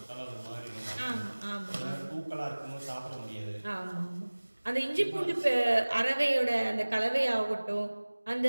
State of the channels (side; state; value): both; inverted; correlation -1.00